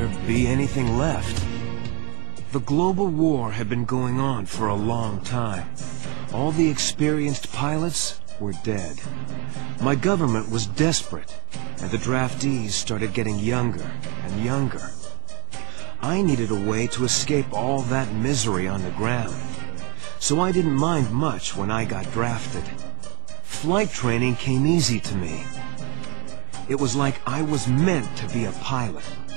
be anything left? The global war had been going on for a long time. All the experienced pilots were dead. My government was desperate, and the draftees started getting younger and younger. I needed a way to escape all that misery on the ground, so I didn't mind much when I got drafted. Flight training came easy to me. It was like I was meant to be a pilot.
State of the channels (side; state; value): left; quieter; 33.4 dB